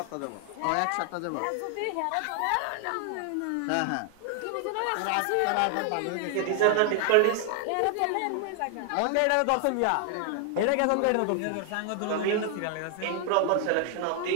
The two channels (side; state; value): both; different; correlation 0.00